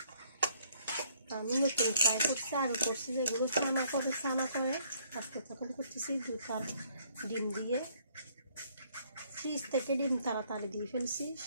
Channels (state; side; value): inverted; both; correlation -0.64